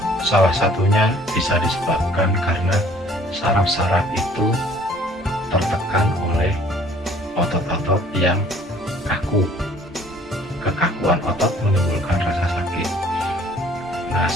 salah satunya bisa disebabkan karena saraf-saraf itu tertekan oleh otot-otot yang kaku. Kekakuan otot menimbulkan rasa sakit. Nah,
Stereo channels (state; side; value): normal; both; correlation 0.55